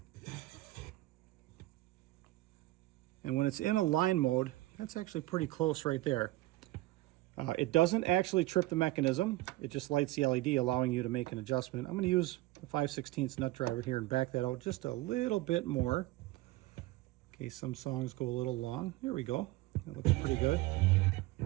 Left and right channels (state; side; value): quieter; left; 18.1 dB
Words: And when it's in a line mode, that's actually pretty close right there. It doesn't actually trip the mechanism. It just lights the LED, allowing you to make an adjustment. I'm going to use the 5/16 nut driver here and back that out just a little bit more, in case some songs go a little long. Here we go. That looks pretty good.